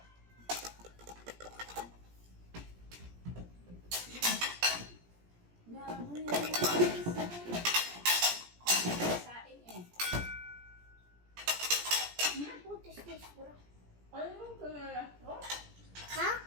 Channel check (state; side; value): late; left; 17 ms